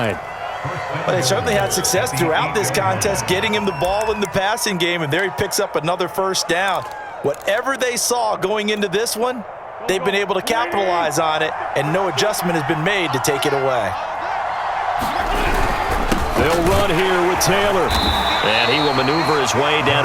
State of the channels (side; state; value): both; identical; correlation 1.00